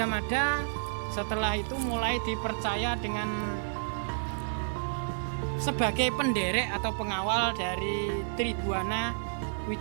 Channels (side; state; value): left; silent; digital silence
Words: Mada setelah itu mulai dipercaya dengan sebagai penderek atau pengawal dari Tribuana